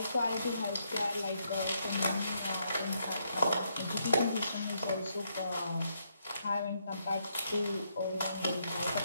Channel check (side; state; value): both; inverted; correlation -0.76